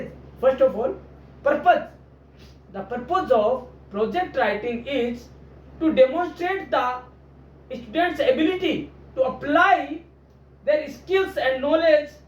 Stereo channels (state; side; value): identical; both; correlation 1.00